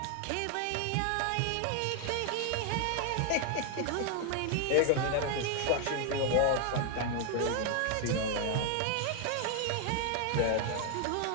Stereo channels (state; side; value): different; both; correlation 0.01